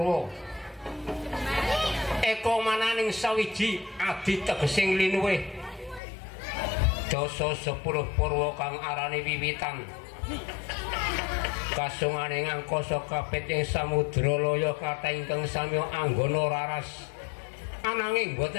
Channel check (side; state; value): right; drops out; at 6.0 s